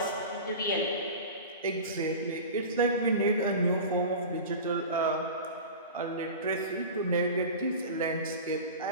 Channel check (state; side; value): inverted; both; correlation -0.32